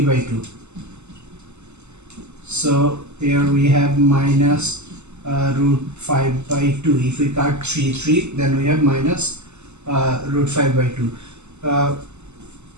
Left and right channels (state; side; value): late; left; 0.82 ms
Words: by 2. So here we have minus root 5 by 2. If we cut 3 then we have minus root 5 by 2.